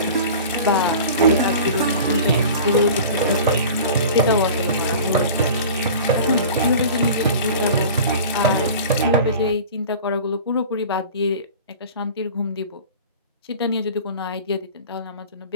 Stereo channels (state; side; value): inverted; both; correlation -0.39